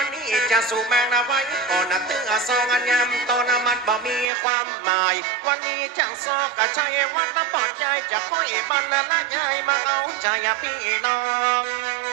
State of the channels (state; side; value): drops out; left; at 4.2 s